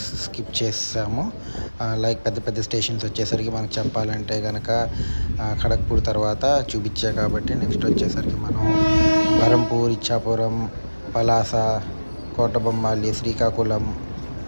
స్కిప్ చేసాము. లైక్ పెద్ద పెద్ద స్టేషన్స్ వచ్చేసరికి మనకు చెప్పాలంటే కనుక ఖడగ్పూర్ తర్వాత చూపించా కాబట్టి నెక్స్ట్ వచ్చేసరికి మనం బరంపూర్, ఇచ్చాపురం, పలాస, కోటబొమ్మాలి, శ్రీకాకుళం,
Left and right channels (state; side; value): inverted; both; correlation -1.00